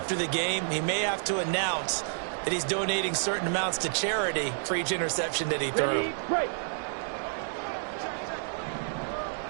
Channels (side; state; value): left; silent; digital silence